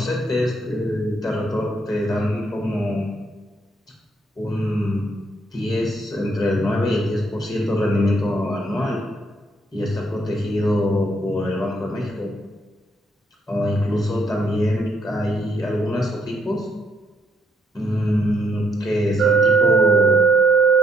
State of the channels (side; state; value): both; normal; correlation 0.72